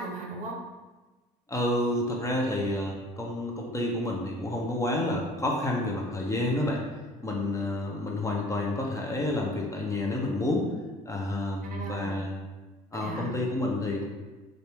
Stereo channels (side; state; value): both; normal; correlation 0.51